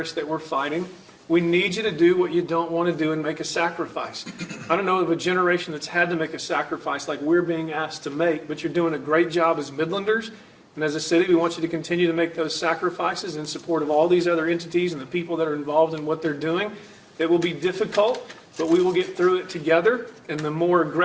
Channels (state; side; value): identical; both; correlation 1.00